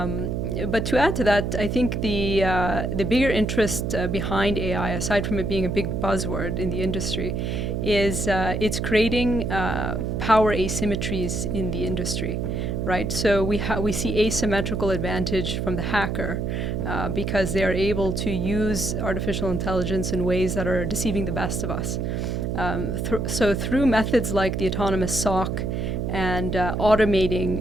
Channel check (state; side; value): noise; right; hum, 1 dB below the sound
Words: to add to that, I think the bigger interest behind AI, aside from it being a big buzzword in the industry, is it's creating power asymmetries in the industry, right? So we see asymmetrical advantage from the hacker because they are able to use artificial intelligence in ways that are deceiving the best of us. So through methods like the autonomous SOC and